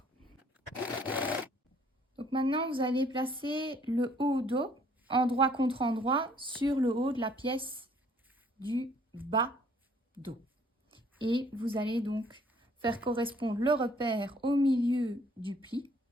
Donc maintenant, vous allez placer le haut dos, endroit contre endroit, sur le haut de la pièce du bas dos. Et vous allez donc faire correspondre le repère au milieu du pli.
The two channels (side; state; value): both; normal; correlation 0.61